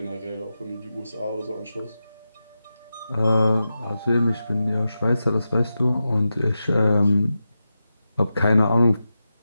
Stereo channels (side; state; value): both; inverted; correlation -0.91